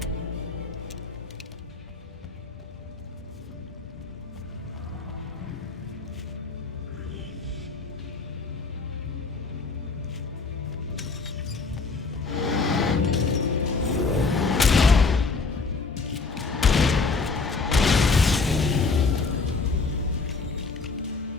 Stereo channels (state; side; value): quieter; right; 4.3 dB